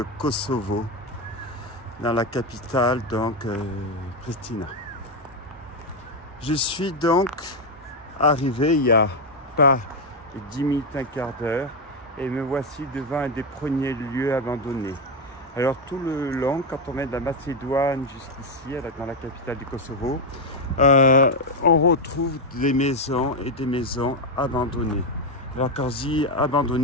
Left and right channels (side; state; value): both; normal; correlation 0.05